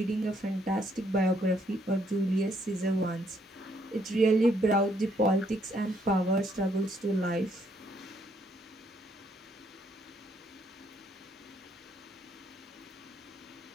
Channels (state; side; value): normal; both; correlation 0.70